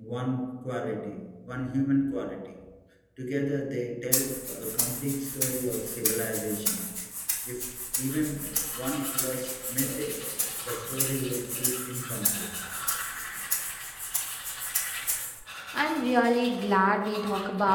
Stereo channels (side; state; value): both; identical; correlation 1.00